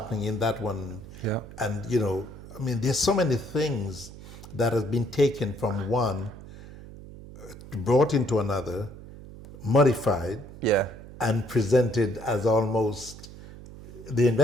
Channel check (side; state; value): right; noise; hum, 16 dB below the sound